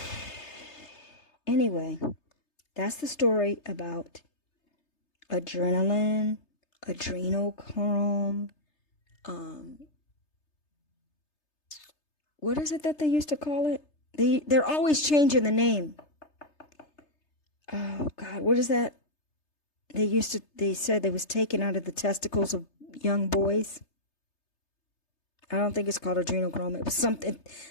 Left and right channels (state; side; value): late; right; 3.3 ms